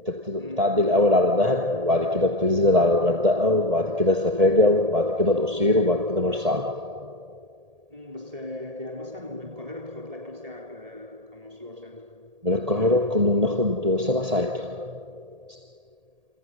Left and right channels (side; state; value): left; late; 1.8 ms